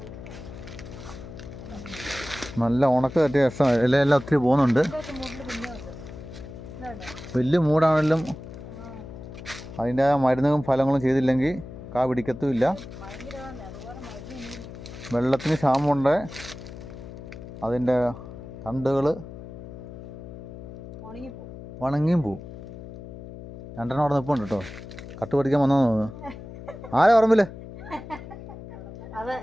നല്ല ഉണക്ക് തട്ടിയ രസം. ഇലയെല്ലാം ഒത്തിരി പോകുന്നുണ്ട്. വലിയ മൂടാണെങ്കിലും അതിൻ്റെ മരുന്നും ഫലങ്ങളും ചെയ്തില്ലെങ്കിൽ കാ പിടിക്കത്തുമില്ല. വെള്ളത്തിന് ക്ഷാമമുണ്ട്. അതിൻ്റെ തണ്ടുകൾ ഉണങ്ങിയും പോവും. രണ്ടെണ്ണം അവിടെ നിൽപ്പുണ്ട് കേട്ടോ. കട്ട് പഠിക്കാൻ വന്നോ തോന്നുന്നു. ആരാ പറമ്പില്?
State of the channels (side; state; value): left; noise; hum, 13 dB below the sound